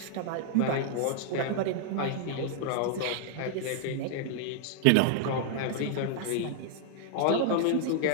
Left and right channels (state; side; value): different; both; correlation 0.00